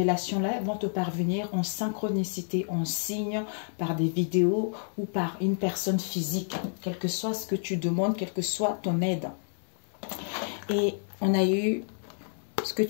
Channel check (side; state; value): right; silent; digital silence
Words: vont te parvenir en synchronicité, en signe, par des vidéos ou par une personne physique, quel que soit ce que tu demandes, quelle que soit ton aide. Et on a eu, ce que